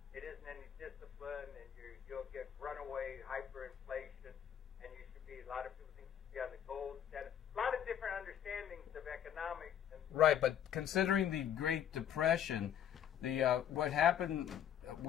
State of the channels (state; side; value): quieter; right; 9.7 dB